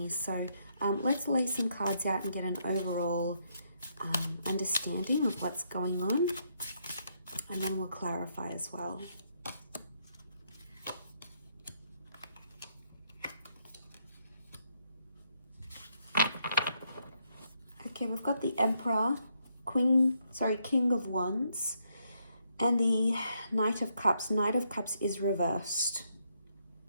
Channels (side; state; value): both; inverted; correlation -0.76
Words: So let's lay some cards out and get an overall understanding of what's going on, and then we'll clarify as well. Okay, we've got the Emperor, King of Wands, and the Knight of Cups. Knight of Cups is reversed.